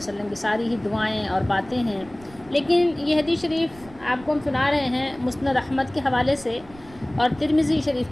کی ساری ہی دعائیں اور باتیں ہیں، لیکن یہ حدیث شریف آپ کو ہم سنا رہے ہیں مسند احمد کے حوالے سے اور ترمذی شریف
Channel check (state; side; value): noise; right; rumble, 22 dB below the sound